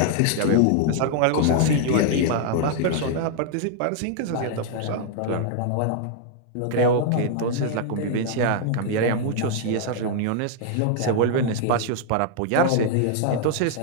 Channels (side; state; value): both; different; correlation 0.00